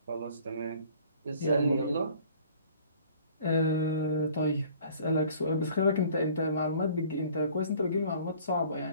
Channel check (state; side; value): inverted; both; correlation -0.53